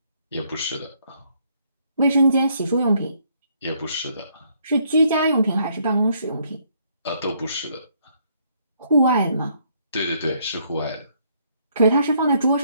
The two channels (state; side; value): inverted; both; correlation -0.69